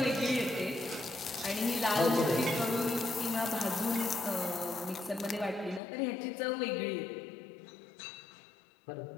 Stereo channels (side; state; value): right; drops out; at 5.8 s